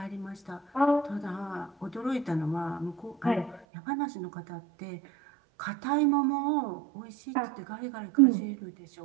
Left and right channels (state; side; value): drops out; left; at 3.7 s